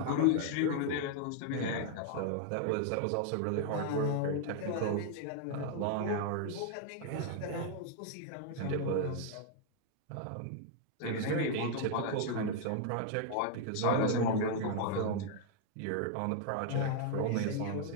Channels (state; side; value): different; both; correlation 0.00